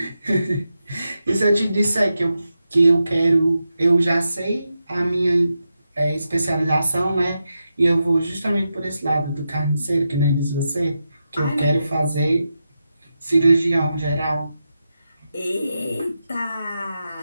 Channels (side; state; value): both; inverted; correlation -0.88